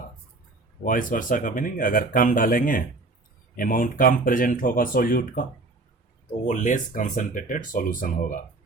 का मीनिंग, अगर कम डालेंगे, अमाउंट कम प्रेजेंट होगा सॉल्यूट का, तो वो लेस कंसंट्रेटेड सॉल्यूशन होगा।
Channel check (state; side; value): quieter; left; 3.3 dB